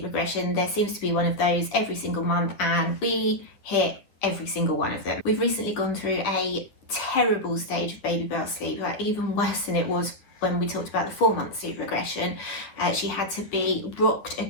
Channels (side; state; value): right; late; 9.9 ms